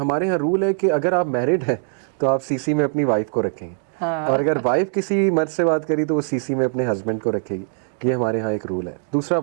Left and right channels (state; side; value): silent; left; digital silence